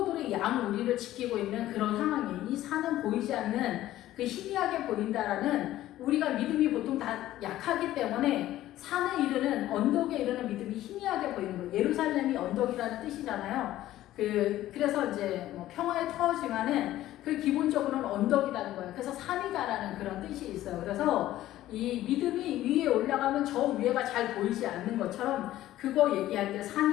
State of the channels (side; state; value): right; quieter; 14.3 dB